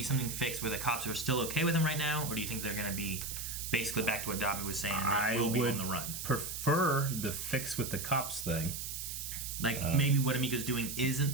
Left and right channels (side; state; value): right; noise; hiss, 6 dB below the sound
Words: something fixed where the cops are still okay with them right now? Or do you think they're going to be basically back to what Dobby was saying, and they will be on the run? Prefer the fix with the cops thing. Maybe what Amico's doing